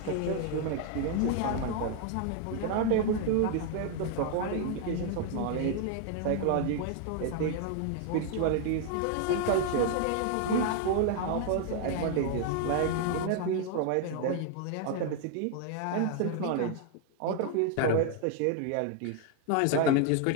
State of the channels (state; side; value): different; both; correlation 0.00